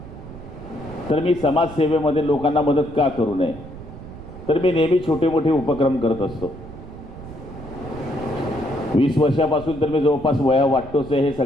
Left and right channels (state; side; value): noise; right; rumble, 14 dB below the sound